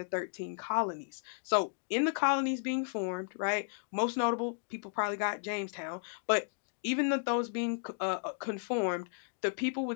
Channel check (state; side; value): silent; right; digital silence